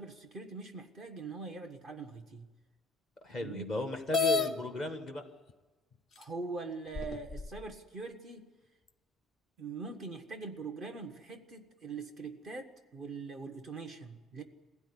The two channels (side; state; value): both; normal; correlation 0.50